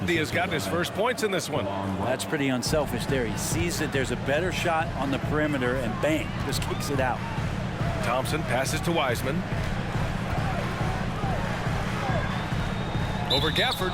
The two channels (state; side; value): identical; both; correlation 1.00